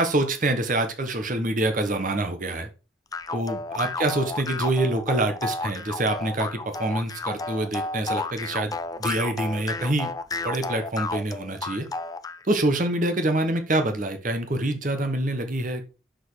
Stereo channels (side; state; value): both; normal; correlation 0.51